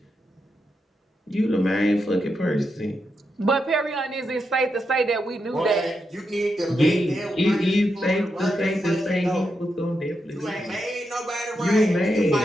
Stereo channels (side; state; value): both; normal; correlation 0.85